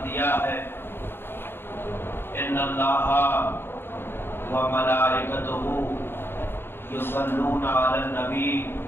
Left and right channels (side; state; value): right; late; 0.11 ms